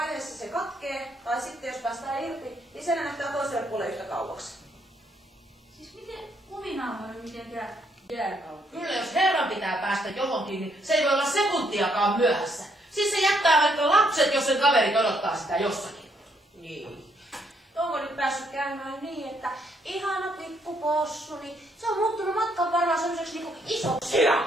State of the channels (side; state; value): both; normal; correlation 0.72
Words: se katkee, tai sitten jos päästään irti, niin se näyttää toiselle puolelle yhtä kauaksi. Siis miten kuminauha on mitenkään jääkausi? Kyllä jos herran pitää päästä johonkin, niin se ei voi olla sekuntiakaan myöhässä. Siis se jättää vaikka lapset, jos sen kaverit odottaa sitä jossakin. Niin. Onko nyt päässyt käymään niin, että ihana pikkupossu, niin se on muuttunut matkan varrella sellaiseksi niinku isoksi